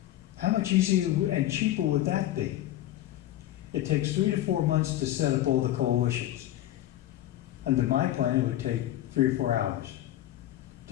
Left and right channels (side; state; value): right; quieter; 13.7 dB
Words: How much easier and cheaper would that be? It takes 3 to 4 months to set up all the coalitions. Under my plan, it would take 3 or 4 hours,